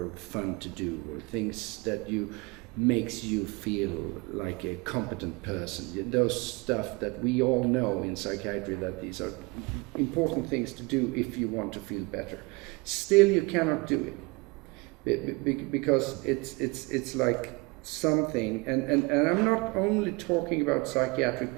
fun to do, or things that makes you feel like a competent person. Those stuff that we all know in psychiatry, that these are important things to do if you want to feel better. Still, you cannot do it because it's like something, and I'm not only talking about psychiatric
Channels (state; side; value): quieter; left; 26.1 dB